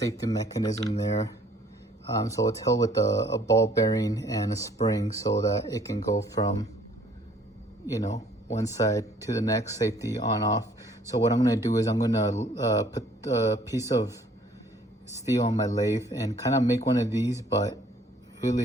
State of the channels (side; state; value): both; normal; correlation 0.59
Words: mechanism there. So it's held with a ball bearing and a spring so that it can go from one side to the next, safety on off. So what I'm going to do is I'm going to put a piece of steel on my lathe and kind of make one of these, but